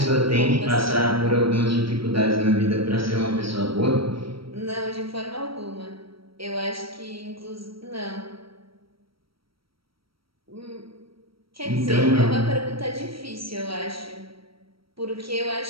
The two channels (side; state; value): left; late; 0.75 ms